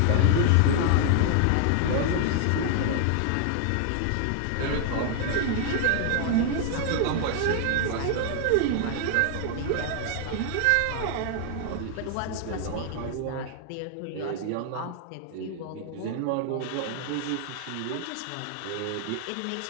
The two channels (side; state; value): both; different; correlation 0.00